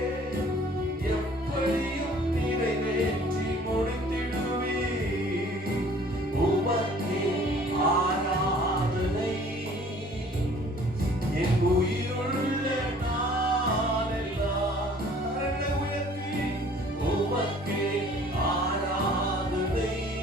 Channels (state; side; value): normal; both; correlation 0.53